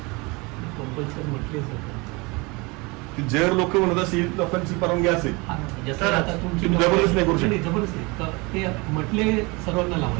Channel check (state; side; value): quieter; left; 26.4 dB